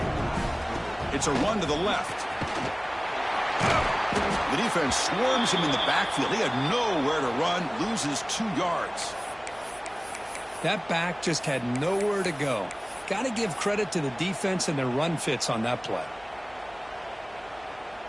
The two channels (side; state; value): right; noise; hum, 27 dB below the sound